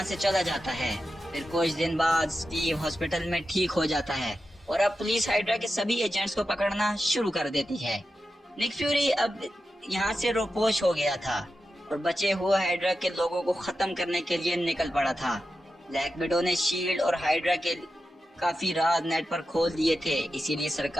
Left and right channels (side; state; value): both; normal; correlation 0.91